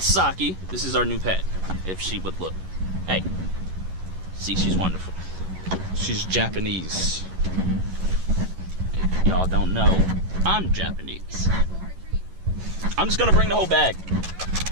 Saki, this is our new pet, if she would look. Hey, see, she's wonderful. She's Japanese. If y'all don't know, I'm Japanese. I'm just gonna bring the whole bag.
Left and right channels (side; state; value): left; late; 11 ms